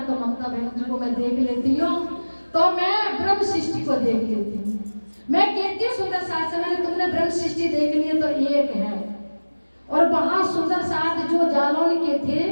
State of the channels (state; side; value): inverted; both; correlation -1.00